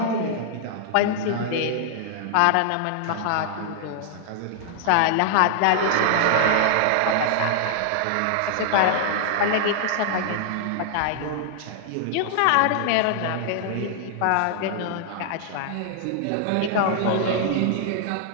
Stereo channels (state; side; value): different; both; correlation 0.00